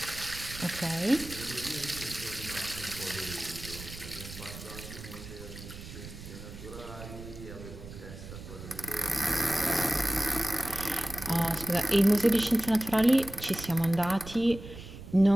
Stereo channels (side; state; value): right; noise; rumble, 13 dB below the sound